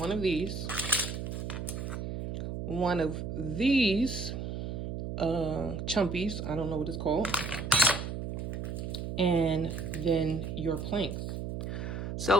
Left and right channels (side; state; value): right; noise; hum, 5 dB below the sound